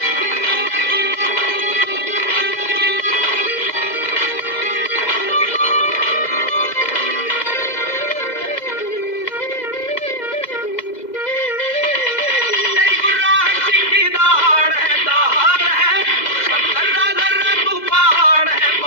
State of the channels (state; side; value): late; right; 2.0 ms